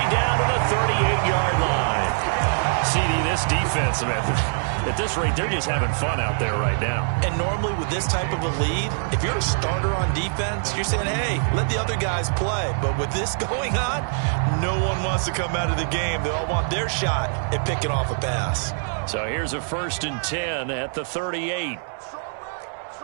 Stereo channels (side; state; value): left; silent; digital silence